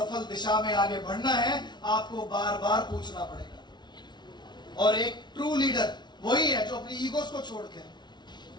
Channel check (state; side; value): late; right; 0.21 ms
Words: दिशा में आगे बढ़ना है, आपको बार बार पूछना पड़ेगा। और एक ट्रू लीडर वही है जो अपनी ईगोस को छोड़ के